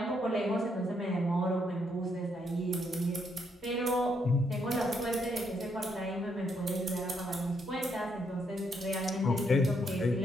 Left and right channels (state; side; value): normal; both; correlation 0.75